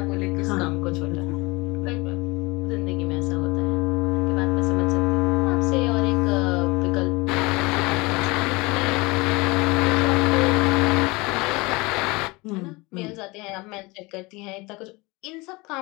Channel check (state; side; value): quieter; right; 24.2 dB